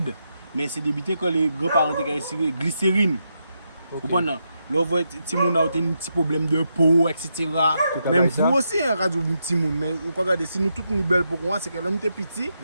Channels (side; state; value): both; inverted; correlation -0.83